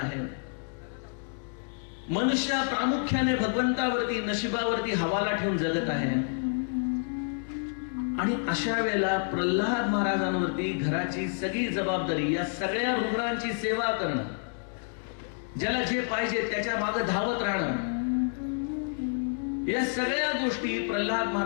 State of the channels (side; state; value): right; silent; 56 dB below the other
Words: मनुष्य प्रामुख्याने भगवंतावरती, नशिबावरती हवाला ठेवून जगत आहे. आणि अशा वेळेला प्रल्हाद महाराजांवरती घराची सगळी जबाबदारी, या सगळ्या रुग्णांची सेवा करणं, ज्याला जे पाहिजे त्याच्या मागे धावत राहणं, या सगळ्या गोष्टी प्रल्हाद